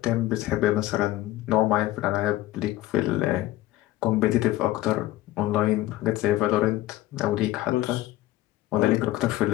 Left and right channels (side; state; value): right; quieter; 16.0 dB